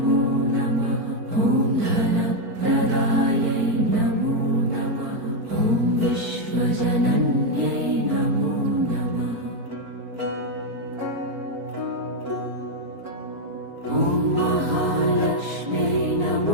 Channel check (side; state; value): left; late; 4.5 ms